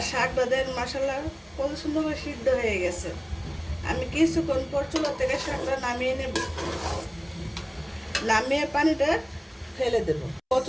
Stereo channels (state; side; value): identical; both; correlation 1.00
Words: শাকটা দেন মশলা কত সুন্দর করে সিদ্ধ হয়ে গেছে। আমি কিছুক্ষণ পর চুলা থেকে শাকটা নামিয়ে নেব, নামিয়ে পানিটা ফেলে দেব।